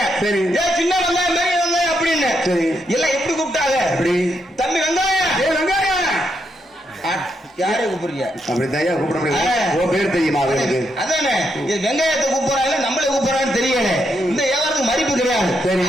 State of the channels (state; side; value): normal; both; correlation 0.80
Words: சரி சின்ன வெங்காயம் பெரிய வெங்காயம் அப்படின்னு எல்லாம் எப்படி கூப்பிட்டாங்க? தம்பி வெங்காயம் வெங்காயம் யாரை கூப்பிடுறீங்க? அப்படி தயா கூப்பிட முடியாது. பேர் தெரியுமா? அதானே வெங்காயத்தை கூப்பிடுறாங்க நம்மளே கூப்பிடுறான்னு தெரியல. இந்த வியாபாரத்துக்கு மதிப்பு கிடையாது. சரி